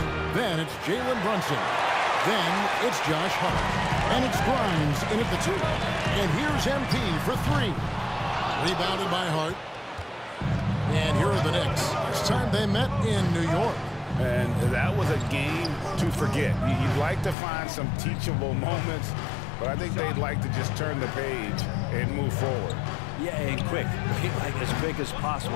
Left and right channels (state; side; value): drops out; right; at 17.4 s